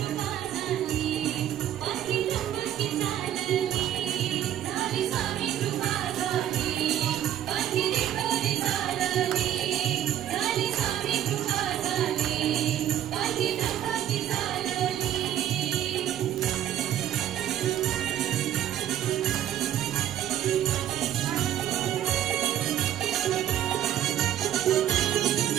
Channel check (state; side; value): quieter; left; 11.4 dB